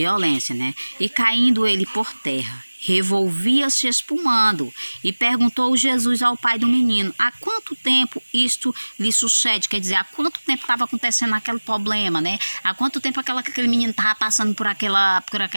né? E caindo ele por terra, revolvia-se espumando, e perguntou Jesus ao pai do menino: há quanto tempo isto lhe sucede? Quer dizer, há quanto tempo estava acontecendo aquele problema, né? Há quanto tempo aquele menino estava passando por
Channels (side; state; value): both; inverted; correlation -1.00